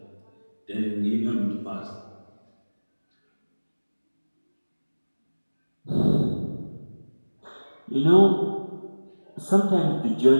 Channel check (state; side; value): inverted; both; correlation -1.00